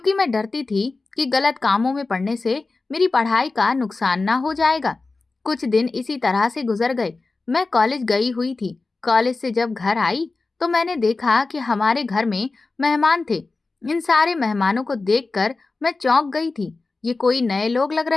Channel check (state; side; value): quieter; right; 3.7 dB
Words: मैं डरती थी कि गलत कामों में पड़ने से मेरी पढ़ाई का नुकसान ना हो जाएगा। कुछ दिन इसी तरह से गुजर गए। मैं कॉलेज गई हुई थी। कॉलेज से जब घर आई तो मैंने देखा कि हमारे घर में मेहमान थे। इन सारे मेहमानों को देखकर मैं चौंक गई थी। ये कोई नए लोग लग